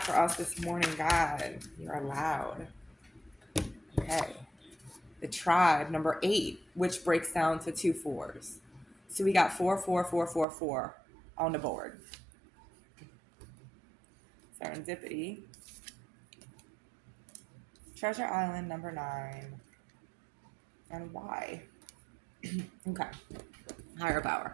for us this morning, God? You're allowed. Okay. The tribe, number 8, which breaks down to 2 4s. So we got 4, 4, 4, 4, 4 on the board. Serendipity. Treasure Island, number 9. And why? Okay. Higher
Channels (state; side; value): drops out; left; at 10.5 s